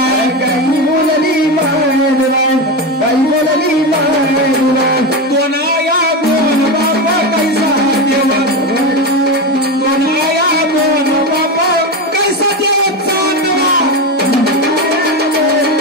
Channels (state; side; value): normal; both; correlation 0.16